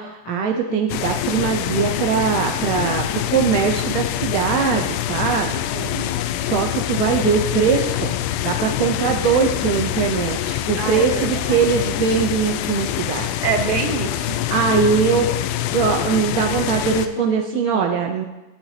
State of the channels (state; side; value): late; right; 24 ms